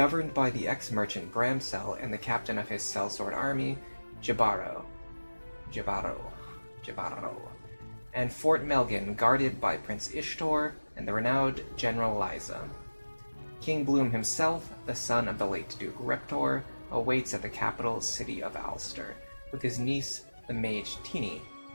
by the ex-merchant Bramsel and the captain of his sellsword army, Jabaro, and Fort Melgan, guarded by Prince Ishtor and the renowned General Liza. King Bloom himself, the son of the late Duke Reptor, awaits at the capital city of Ulster, with his niece, the mage Tini.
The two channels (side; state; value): both; inverted; correlation -1.00